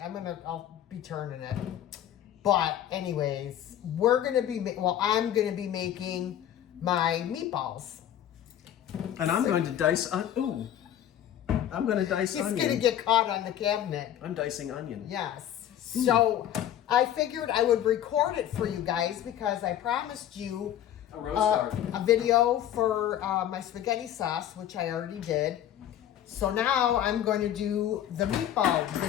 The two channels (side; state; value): right; quieter; 11.1 dB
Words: I'll be turning it. But anyways, I'm gonna be making my meatballs. And I'm going to dice. I'm going to dice onion. It's gonna get caught on the cabinet. I'm dicing onion. Yes. So I figured I would record it for you guys because I promised you a video for my spaghetti sauce, which I already did. So now I'm going to do the meatball